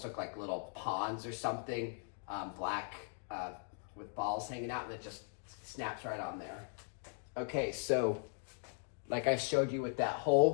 look like little ponds or something, black with balls hanging out, and it just snaps right on there. Okay, so like I showed you with that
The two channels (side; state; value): right; silent; 52 dB below the other